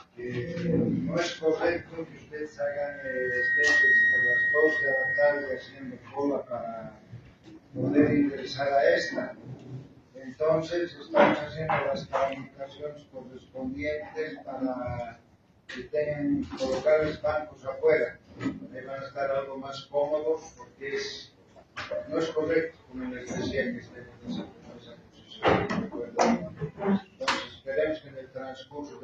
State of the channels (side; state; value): both; identical; correlation 1.00